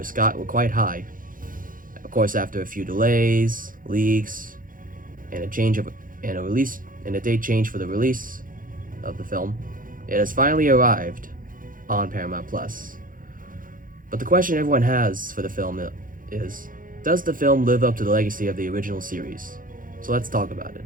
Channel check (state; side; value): late; left; 0.40 ms